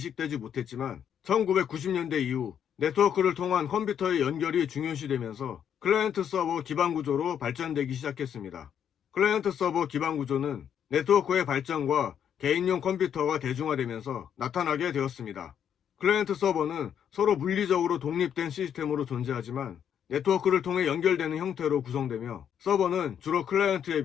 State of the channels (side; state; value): right; quieter; 8.8 dB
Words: 못했지만 1990년대 이후 네트워크를 통한 컴퓨터의 연결이 중요시되면서 클라이언트 서버 기반 구조로 발전되기 시작했습니다. 클라이언트 서버 기반 구조는 네트워크의 발전과 개인용 컴퓨터가 대중화되면서 나타나게 되었습니다. 클라이언트 서버는 서로 물리적으로 독립된 시스템으로 존재하지만 네트워크를 통해 연결되는 형태로 구성되며 서버는 주로 클라이언트에